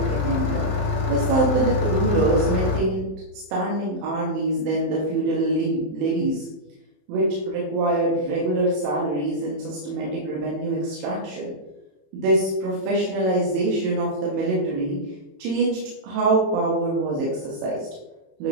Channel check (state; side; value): late; left; 27 ms